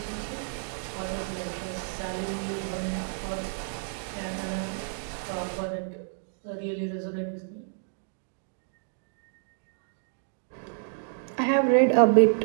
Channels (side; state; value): left; silent; digital silence